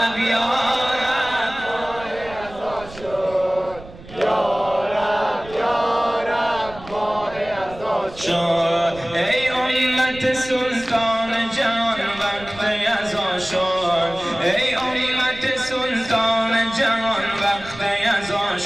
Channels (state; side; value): noise; right; rumble, 18 dB below the sound